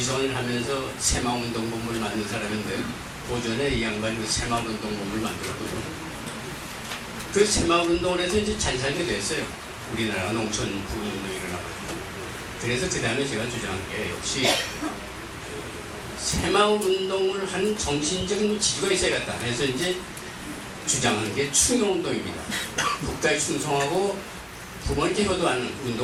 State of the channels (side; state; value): both; identical; correlation 1.00